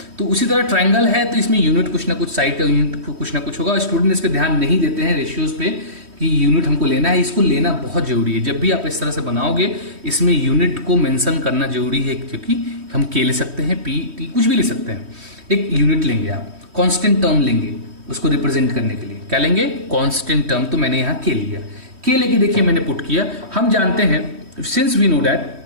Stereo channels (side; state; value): left; late; 3.1 ms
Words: तो उसी तरह ट्रायंगल है तो इसमें यूनिट कुछ ना कुछ, साइड का यूनिट कुछ ना कुछ होगा। स्टूडेंट इस पे ध्यान नहीं देते हैं रेशियोज पे कि यूनिट हमको लेना है, इसको लेना बहुत जरूरी है। जब भी आप इस तरह से बनाओगे इसमें यूनिट को मेंशन करना जरूरी है, क्योंकि हम के ले सकते हैं, पी टी कुछ भी ले सकते हैं। एक यूनिट लेंगे आप, कांस्टेंट टर्म लेंगे उसको रिप्रेजेंट करने के लिए। क्या लेंगे? Constant term. तो मैंने यहाँ के लिया, के लेके देखिए मैंने पुट किया। हम जानते हैं since we know that,